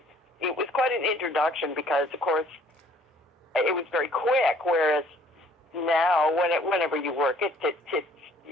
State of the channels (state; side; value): normal; both; correlation 0.58